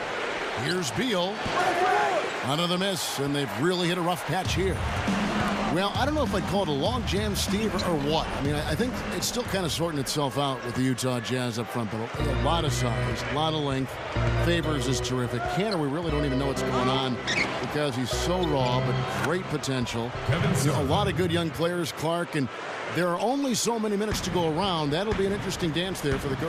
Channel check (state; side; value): identical; both; correlation 1.00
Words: Here's Beal. Another miss, and they've really hit a rough patch here. Well, I don't know if I'd call it a log jam, Steve, or what. I mean, I think it's still kind of sorting itself out with the Utah Jazz up front, but a lot of size, a lot of length. Favors is terrific. Kanter, we really don't even know what's going on because he's so raw, but great potential. A lot of good young players, Clark, and there are only so many minutes to go around. That'll be an interesting dance there for the